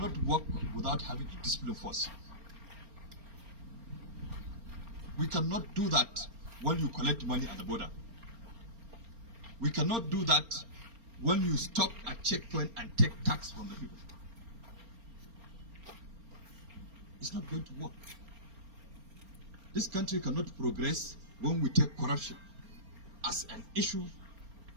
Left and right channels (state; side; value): late; left; 4.3 ms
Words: work without having a discipline force. We cannot do that when you collect money at the border. We cannot do that when you stop at checkpoint and take tax from the people. It's not going to work. This country cannot progress when we take corruption as an issue